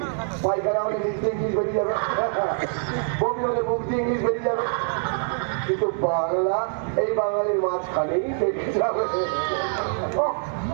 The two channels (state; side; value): silent; left; 62 dB below the other